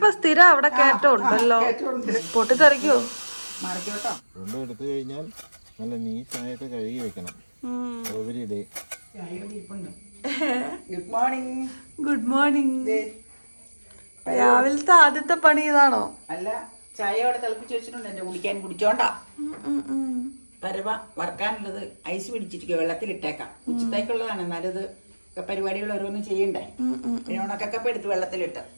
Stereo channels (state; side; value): inverted; both; correlation -1.00